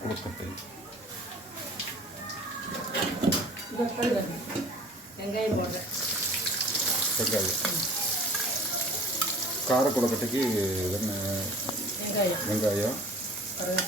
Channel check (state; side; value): normal; both; correlation 0.47